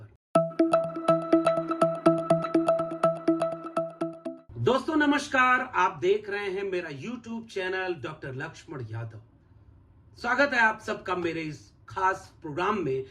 दोस्तों नमस्कार, आप देख रहे हैं मेरा YouTube channel doctor Laxman Yadav. स्वागत है आप सबका मेरे इस खास प्रोग्राम में,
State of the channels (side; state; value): both; identical; correlation 1.00